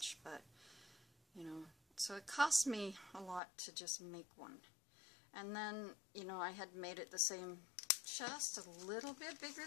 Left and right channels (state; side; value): drops out; right; at 3.4 s